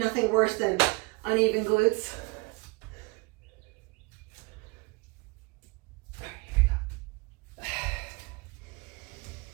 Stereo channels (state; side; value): quieter; left; 27.2 dB